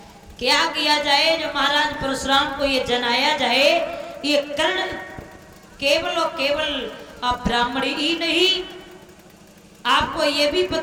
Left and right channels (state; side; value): identical; both; correlation 1.00